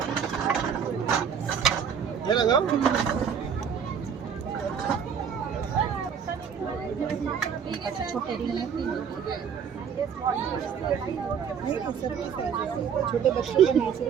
लगाओ। छोटे बच्चों के नहीं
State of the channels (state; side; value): quieter; left; 7.3 dB